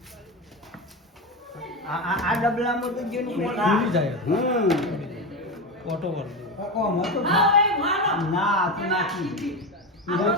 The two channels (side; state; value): both; normal; correlation 0.18